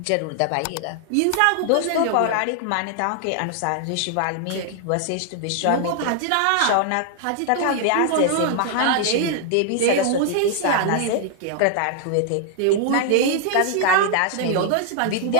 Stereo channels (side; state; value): both; different; correlation 0.00